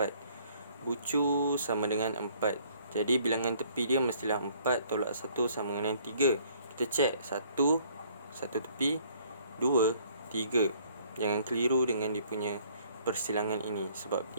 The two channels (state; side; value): inverted; both; correlation -0.61